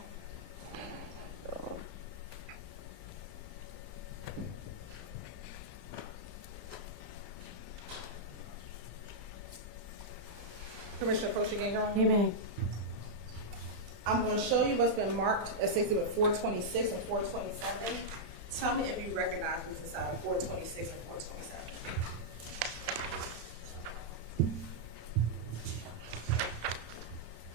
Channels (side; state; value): left; late; 35 ms